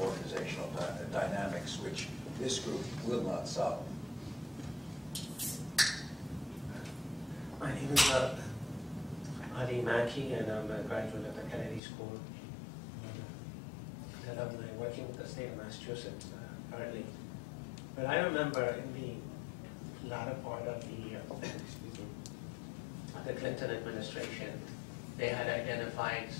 organizational dynamics, which this group will not solve. My name is Ali Mackey, and I'm a graduate at the Kennedy School. And I'm working with the state of Massachusetts currently. But I remember in the latter part of the Clinton administration, they had identified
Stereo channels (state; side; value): drops out; right; at 11.8 s